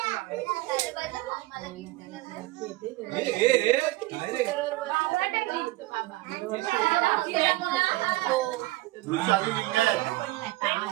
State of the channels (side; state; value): left; quieter; 19.1 dB